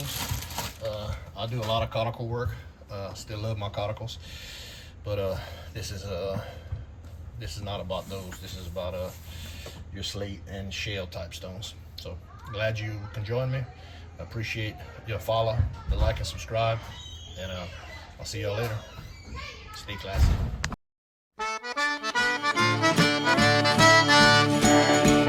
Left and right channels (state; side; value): identical; both; correlation 1.00